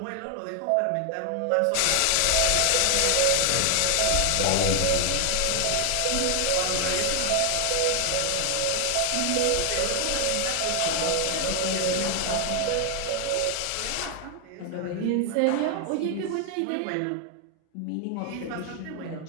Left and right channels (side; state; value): both; different; correlation 0.00